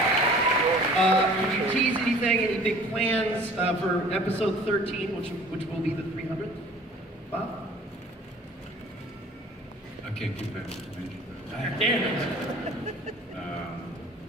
Can you tease anything, any big plans for episode 13, which will be the 300th? Bob? I can't give that information. Damn it.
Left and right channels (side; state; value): both; normal; correlation 0.49